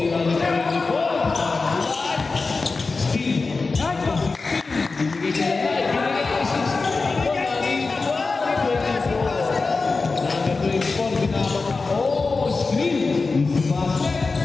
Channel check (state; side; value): quieter; right; 4.0 dB